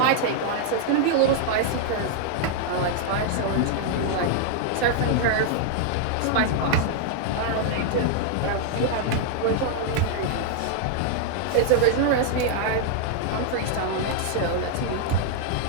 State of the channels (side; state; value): both; different; correlation 0.00